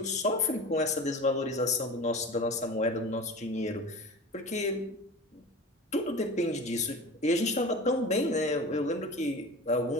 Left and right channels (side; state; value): both; normal; correlation 0.34